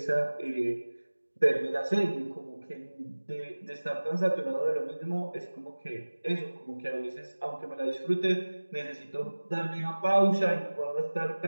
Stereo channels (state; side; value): inverted; both; correlation -1.00